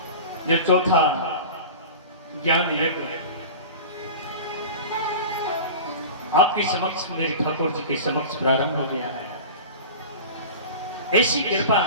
जो चौथा ज्ञान यज्ञ आपके समक्ष, मेरे ठाकुर जी के समक्ष प्रारंभ हो गया है। ऐसी कृपा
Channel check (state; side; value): inverted; both; correlation -0.34